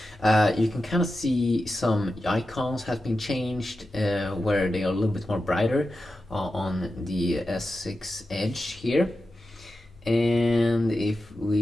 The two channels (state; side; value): normal; both; correlation 0.91